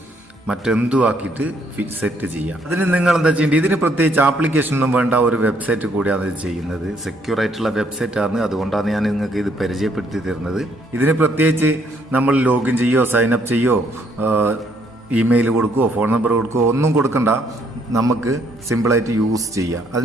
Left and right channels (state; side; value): normal; both; correlation 0.69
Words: മറ്റെന്തും ആക്കിയിട്ട് സെറ്റ് ചെയ്യാം. അതിന് നിങ്ങൾ എന്താ ചെയ്യേണ്ടത്? ഇതിന് പ്രത്യേകിച്ച് ആപ്ലിക്കേഷൻ ഒന്നും വേണ്ട, ഒരു വെബ്സൈറ്റ് കൂടിയാണ് ഇത് ചെയ്യുന്നത്. സെക്യൂർ ആയിട്ടുള്ള വെബ്സൈറ്റ് ആണ്. അതുകൊണ്ടാണ് ഞാൻ നിങ്ങൾക്ക് ഇത് പരിചയപ്പെടുത്തി തരുന്നത്. ഇതിന് പ്രത്യേകിച്ച് നമ്മൾ ലോഗിൻ ചെയ്യോ സൈനപ്പ് ചെയ്യോ ഇമെയിൽ കൊടുക്കുകയോ ഫോൺ നമ്പർ കൊടുക്കുകയോ ഒന്നും കൊടുക്കണ്ട. നമുക്ക് സിമ്പിളായിട്ട് യൂസ് ചെയ്യാം.